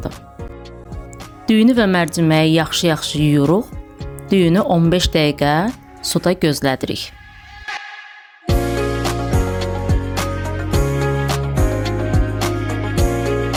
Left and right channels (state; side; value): identical; both; correlation 1.00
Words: Düyünü və mərciməyi yaxşı yuyuruq. Düyünü 15 dəqiqə suda gözlədirik.